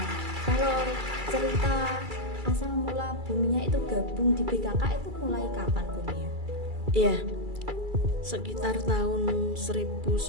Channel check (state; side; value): late; left; 2.3 ms